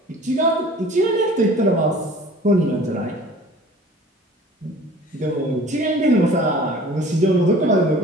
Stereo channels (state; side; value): normal; both; correlation 0.46